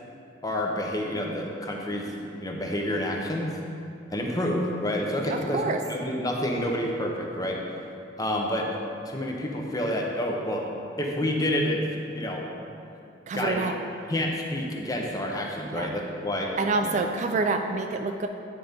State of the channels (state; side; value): normal; both; correlation 0.35